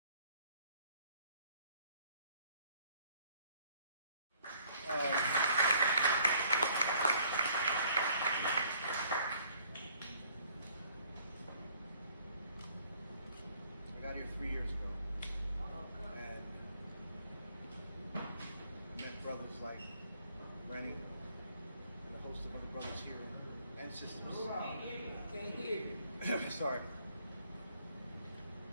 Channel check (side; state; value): both; inverted; correlation -0.61